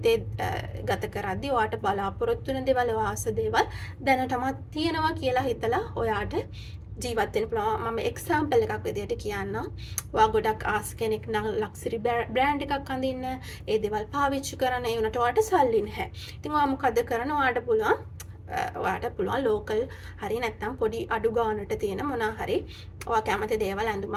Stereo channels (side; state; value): both; identical; correlation 1.00